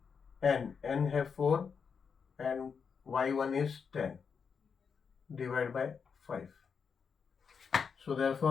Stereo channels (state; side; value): quieter; right; 6.1 dB